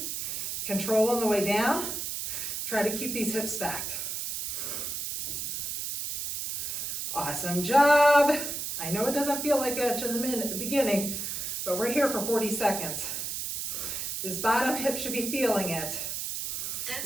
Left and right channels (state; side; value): noise; right; hiss, 4 dB below the sound